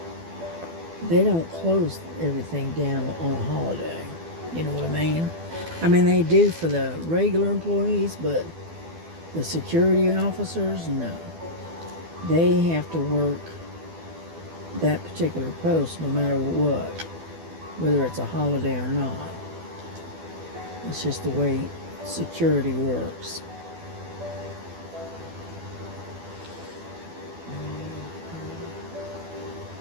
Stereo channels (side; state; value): left; late; 12 ms